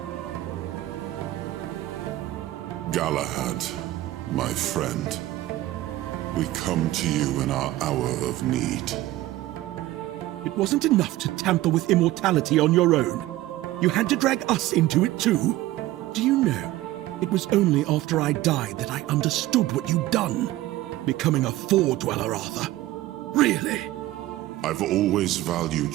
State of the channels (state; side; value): quieter; left; 16.2 dB